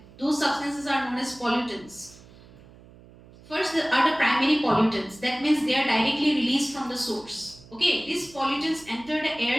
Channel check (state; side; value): noise; right; hum, 23 dB below the sound